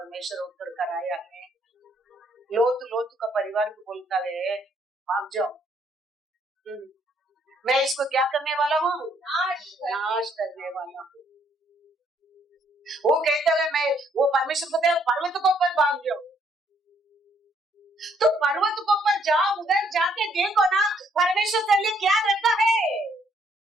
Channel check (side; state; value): both; normal; correlation 0.68